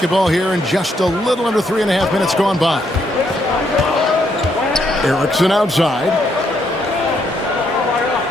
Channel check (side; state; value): both; normal; correlation 0.74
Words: here, and just a little under 3.5 minutes gone by. Erickson outside.